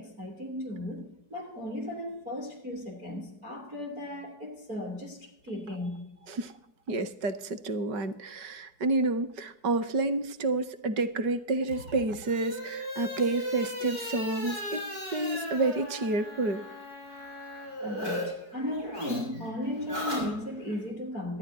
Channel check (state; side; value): late; left; 4.7 ms